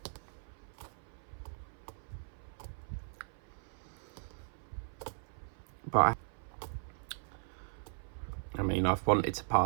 But I mean, I've wanted to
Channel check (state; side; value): silent; left; 52 dB below the other